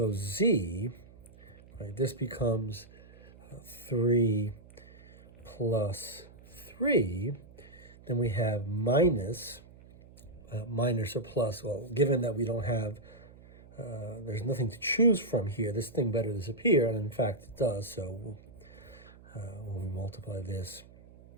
z, right, this becomes 3 plus 3, then we have minus or plus. Well, given that we don't have, there's nothing to choose from here, this thing better disappear, and in fact it does. So when we multiply this,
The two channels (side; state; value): right; noise; hum, 22 dB below the sound